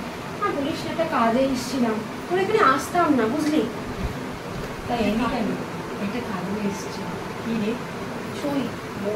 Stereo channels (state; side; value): identical; both; correlation 1.00